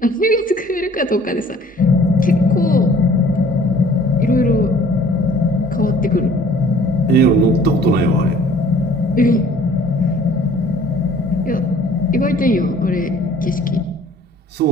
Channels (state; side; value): normal; both; correlation 0.54